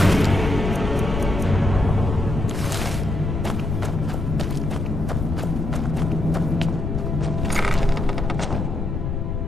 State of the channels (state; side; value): noise; left; rumble, 2 dB below the sound